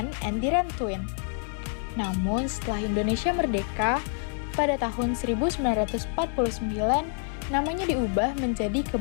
and Diran-Twin. Namun setelah Indonesia merdeka, pada tahun 1949, namanya diubah menjadi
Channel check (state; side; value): silent; right; 60 dB below the other